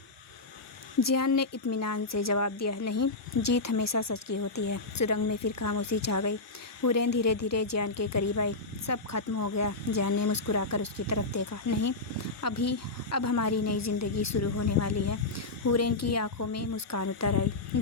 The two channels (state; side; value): quieter; right; 3.3 dB